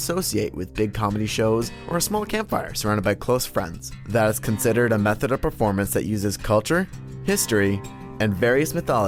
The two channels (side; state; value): both; identical; correlation 1.00